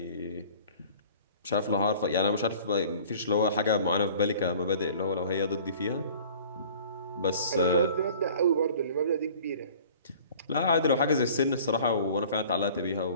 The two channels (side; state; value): both; inverted; correlation -0.48